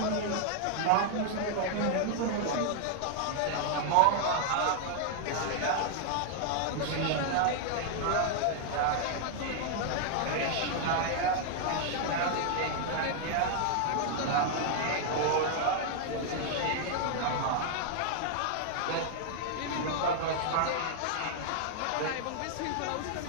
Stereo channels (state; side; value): different; both; correlation 0.00